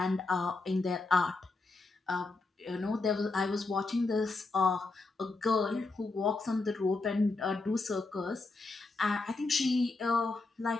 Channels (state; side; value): quieter; right; 3.5 dB